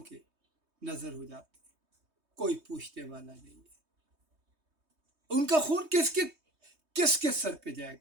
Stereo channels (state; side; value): late; left; 3.2 ms